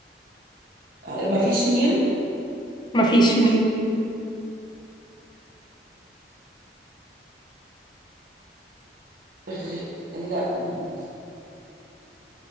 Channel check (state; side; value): normal; both; correlation 0.63